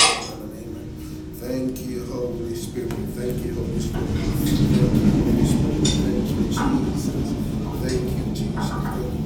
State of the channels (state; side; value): identical; both; correlation 1.00